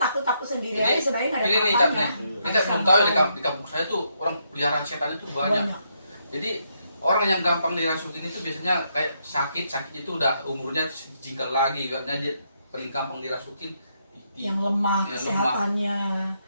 sendiri aja sebenarnya nggak ada Ini nih apa-apanya. capnya. Ini saya belum tahu ya, di kampung saya tuh orang peliharaan setan itu banyak. Jadi orang yang gampang dirasukin itu biasanya kayak sakit itu udah umurnya jinggal lagi, karena dia paling gampang dirasukin. Yang lemah Yang kesehatannya,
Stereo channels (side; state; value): both; inverted; correlation -0.77